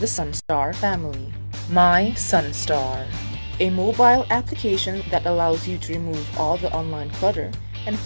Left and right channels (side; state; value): both; inverted; correlation -1.00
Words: Sunstar family, My Sunstar, a mobile application that allows you to remove all the online clutter and